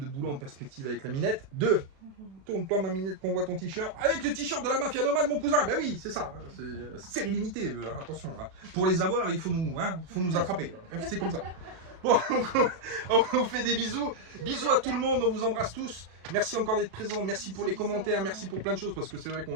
boulot en perspective avec la minette. Deux, tourne-toi ma minette qu'on voit ton t-shirt. Avec le t-shirt de la mafia nomade, mon cousin. Ben oui, c'est ça. C'est série limitée, attention. Hein. Pour les avoir, il faut nous attraper. C'est comme ça. Bon, on vous fait des bisous. Bisous à tout le monde, on vous embrasse tous. Merci encore d'être présents, merci pour les commentaires, merci pour plein de choses, parce que c'est vrai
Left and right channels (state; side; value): late; left; 37 ms